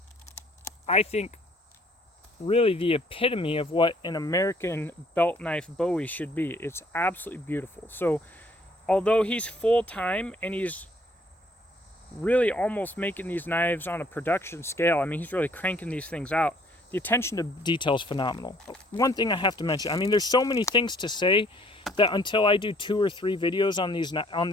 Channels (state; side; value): normal; both; correlation 0.61